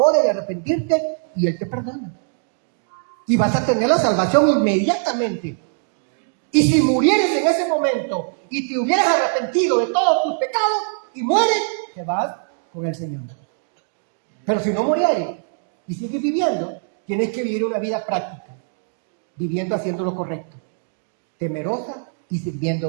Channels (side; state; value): left; silent; digital silence